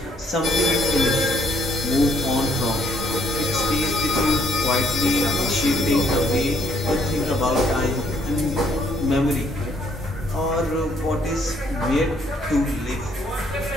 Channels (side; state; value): both; normal; correlation 0.68